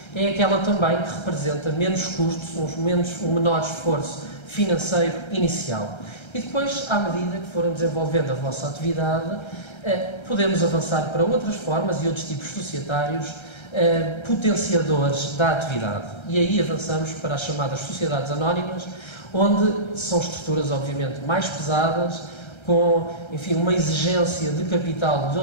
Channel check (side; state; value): right; late; 1.3 ms